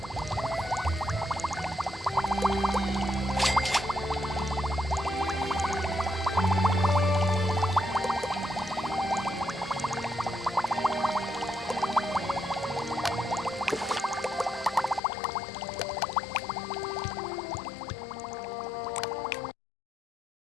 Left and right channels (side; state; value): right; drops out; at 15.0 s